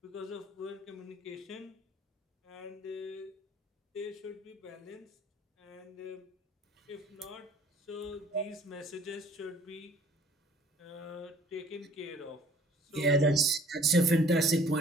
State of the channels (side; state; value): both; normal; correlation 0.55